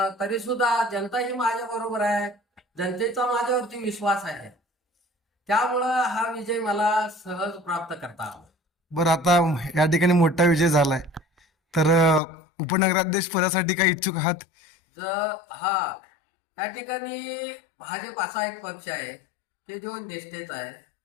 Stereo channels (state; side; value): drops out; right; at 12.2 s